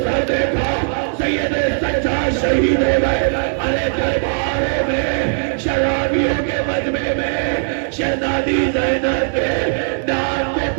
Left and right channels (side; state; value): left; silent; digital silence